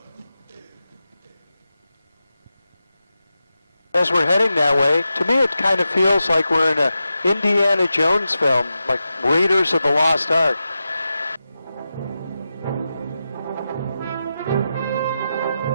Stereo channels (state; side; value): inverted; both; correlation -0.90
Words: As we're heading that way, to me it kind of feels like we're in a Indiana Jones film, like Raiders of the Lost Ark.